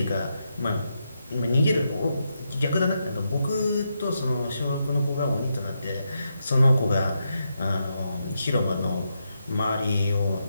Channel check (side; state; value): both; inverted; correlation -0.83